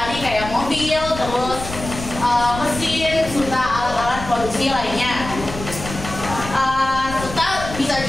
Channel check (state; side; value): noise; left; rumble, 10 dB below the sound